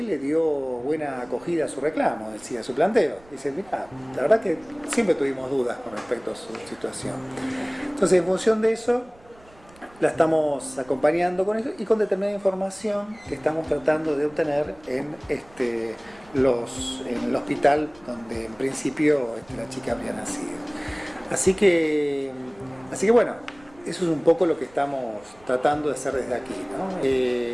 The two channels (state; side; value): noise; right; rumble, 27 dB below the sound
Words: le dio buena acogida a su reclamo, decía, a su planteo. Dice, mira, la verdad que siempre tuvimos dudas con respecto a su situación. Entonces, en función de eso, la estamos acompañando con eso y con determinada información que estamos tratando de obtener en el hospital donde en principio la chica habría nacido. Así que bueno, eso es un poco lo que estamos tratando de hacer desde aquí, ¿no?